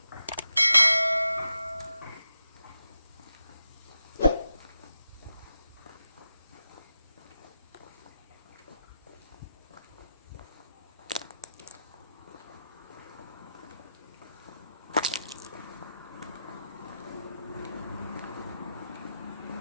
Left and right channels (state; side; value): inverted; both; correlation -0.88